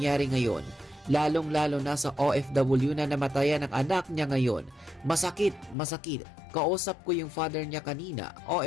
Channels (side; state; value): right; drops out; at 5.8 s